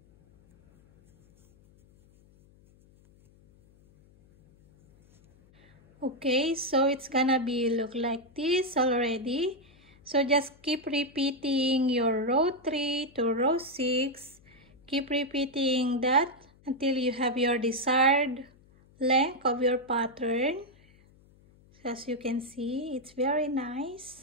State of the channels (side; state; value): left; noise; hum, 29 dB below the sound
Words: Okay, so it's gonna be look like this already. So just keep repeating your row 3 to row 6. Keep repeating that until you have your desired length of your pattern. As you can see, it's very